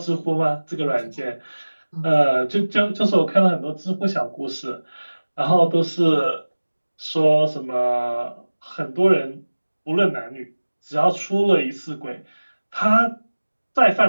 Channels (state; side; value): inverted; both; correlation -1.00